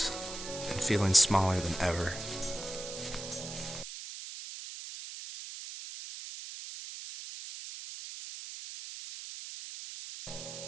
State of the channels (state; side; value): noise; right; hiss, 9 dB below the sound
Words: and feeling smaller than ever.